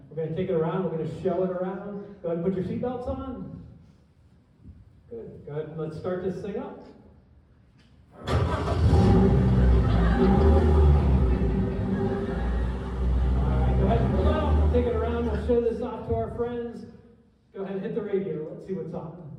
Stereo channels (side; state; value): both; identical; correlation 1.00